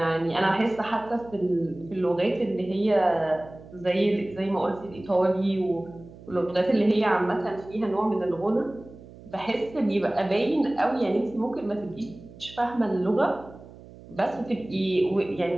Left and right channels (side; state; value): right; noise; hum, 19 dB below the sound